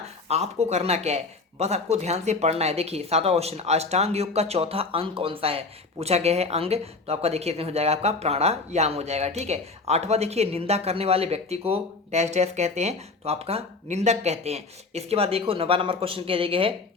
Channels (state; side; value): quieter; right; 3.9 dB